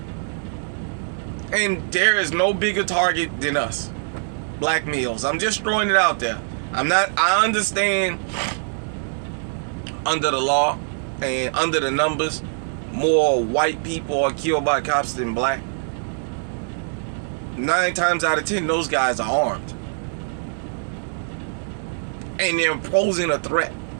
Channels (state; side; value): silent; left; digital silence